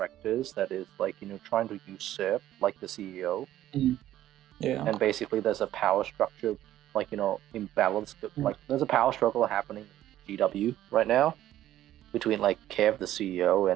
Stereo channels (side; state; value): left; quieter; 13.1 dB